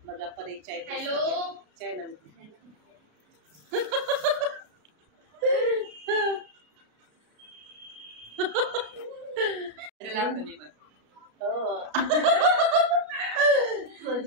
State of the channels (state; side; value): late; left; 33 ms